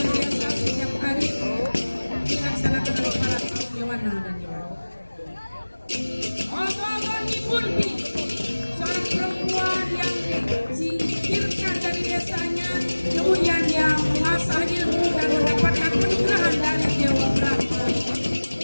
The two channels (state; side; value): inverted; both; correlation -1.00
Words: setiap hari dilaksanakan oleh para kaum Yawana dan Yawana. Ogo-ogo Nyibundi, seorang perempuan yang disingkirkan dari desanya, kemudian yang mengasah ilmu dan mendapatkan peninggalan dari Dewa Brahma,